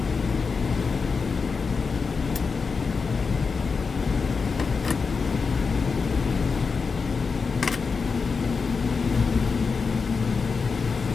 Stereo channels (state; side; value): quieter; right; 5.0 dB